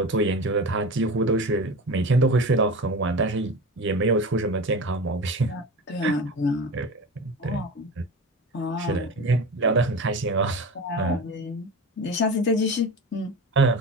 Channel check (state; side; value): normal; both; correlation 0.29